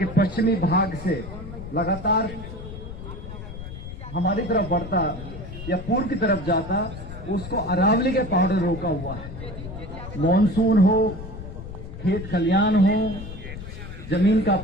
पश्चिमी भाग से लगातार हमारी तरफ बढ़ता या पूर्व की तरफ जाता, उसको अरावली के पहाड़ों ने रोका हुआ है। मॉनसून हो, खेत खलियान हो, जमीन का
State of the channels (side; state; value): left; noise; rumble, 11 dB below the sound